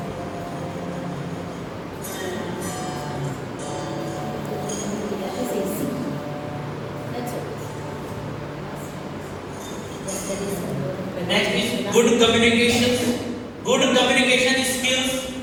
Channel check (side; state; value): both; identical; correlation 1.00